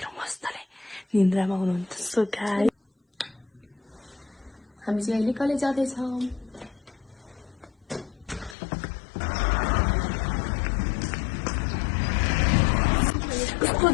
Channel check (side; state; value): right; drops out; at 8.6 s